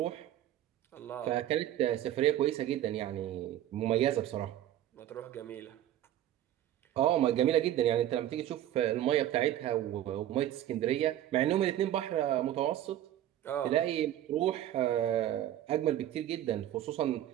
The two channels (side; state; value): left; quieter; 12.3 dB